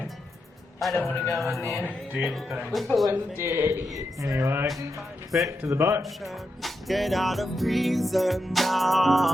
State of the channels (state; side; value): normal; both; correlation 0.86